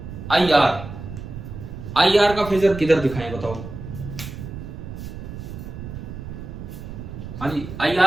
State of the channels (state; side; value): noise; right; rumble, 10 dB below the sound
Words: IR का फेजर किधर दिखाएं बताओ। हाँ जी,